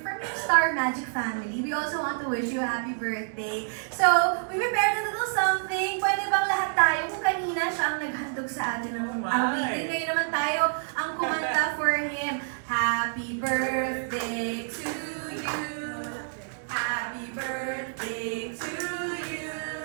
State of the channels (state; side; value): silent; left; digital silence